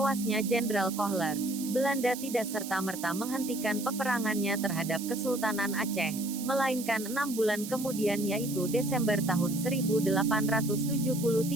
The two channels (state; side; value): noise; right; hiss, 10 dB below the sound